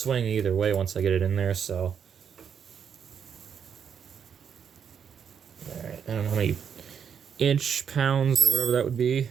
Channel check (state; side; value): quieter; left; 7.5 dB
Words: either way once I get it in there, so. Alright, I don't know how many pounds or whatever that would be.